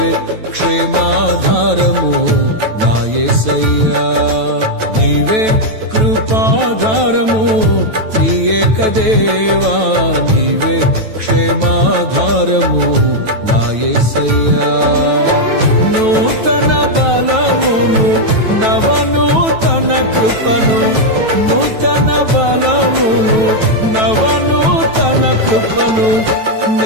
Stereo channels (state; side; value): late; left; 9.2 ms